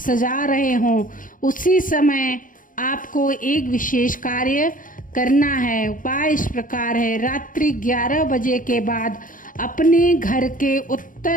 रहे हों, उसी समय आपको एक विशेष कार्य करना है। उपाय इस प्रकार है, रात्रि 11 बजे के बाद अपने घर के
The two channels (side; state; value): right; late; 0.39 ms